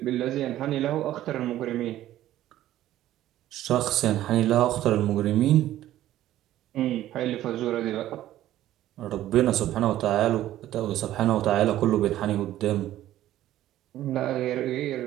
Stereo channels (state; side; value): quieter; left; 13.6 dB